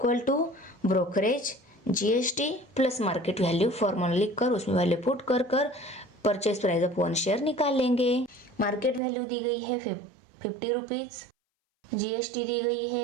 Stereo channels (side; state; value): left; drops out; at 9.0 s